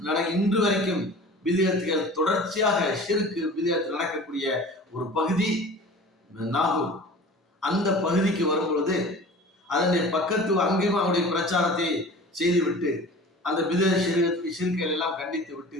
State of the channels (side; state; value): both; normal; correlation 0.41